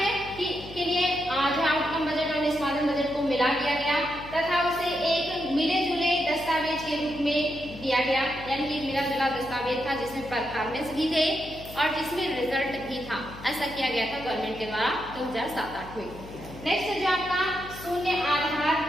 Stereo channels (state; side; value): noise; left; hum, 15 dB below the sound